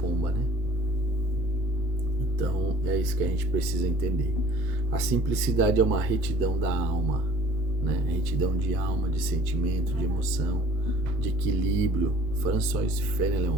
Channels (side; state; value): both; normal; correlation 0.52